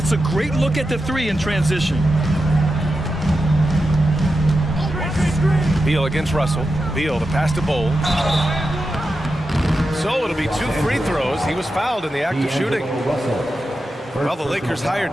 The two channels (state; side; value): normal; both; correlation 0.90